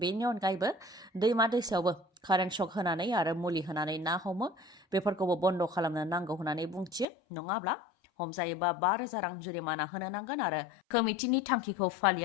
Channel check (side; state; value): right; drops out; at 7.1 s